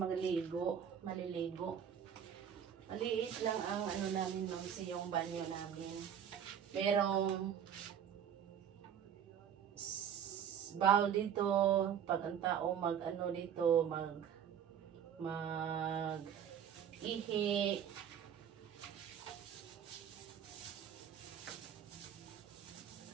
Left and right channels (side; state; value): left; quieter; 8.7 dB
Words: Maliit lang ang namin mamsi, yung banyo namin. Merong bowl dito, pag ang tao dito, ihi.